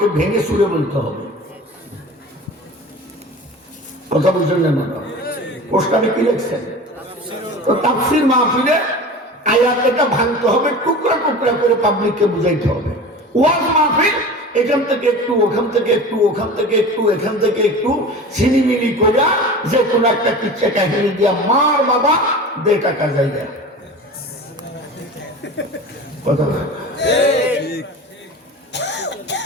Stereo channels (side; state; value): both; normal; correlation 0.35